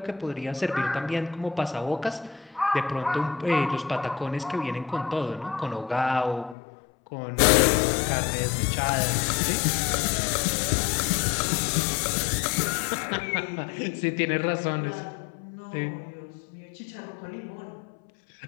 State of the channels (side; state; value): right; drops out; at 6.6 s